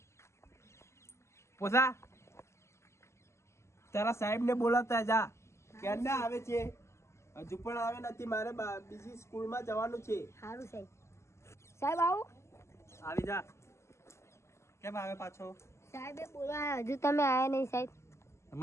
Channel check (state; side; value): late; right; 0.13 ms